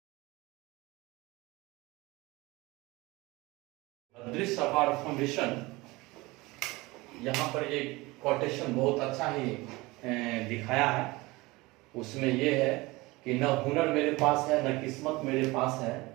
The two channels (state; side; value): quieter; left; 22.1 dB